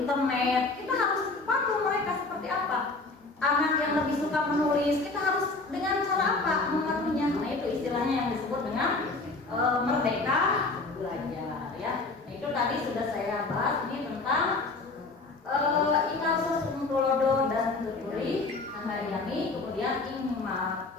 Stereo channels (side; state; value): right; quieter; 3.5 dB